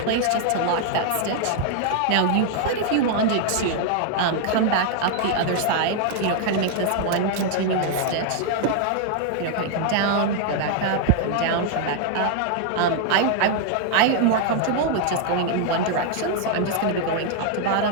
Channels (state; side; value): different; both; correlation 0.00